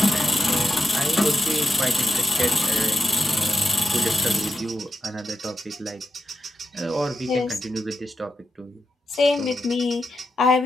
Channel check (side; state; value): both; normal; correlation 0.88